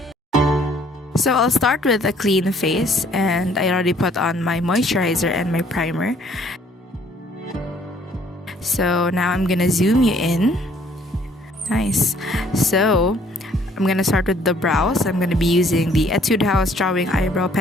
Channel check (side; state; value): both; normal; correlation 0.61